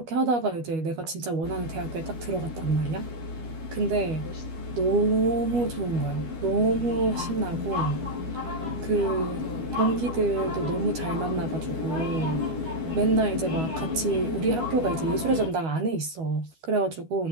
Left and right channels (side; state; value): left; late; 12 ms